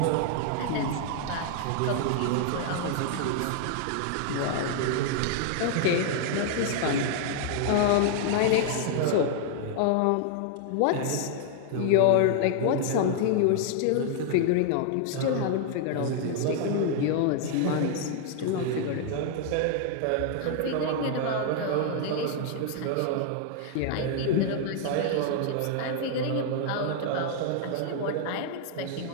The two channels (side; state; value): both; different; correlation -0.01